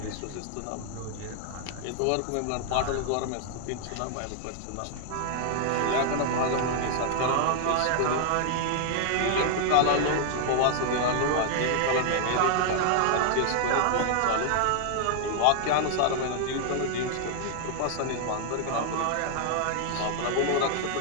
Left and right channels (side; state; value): both; different; correlation 0.00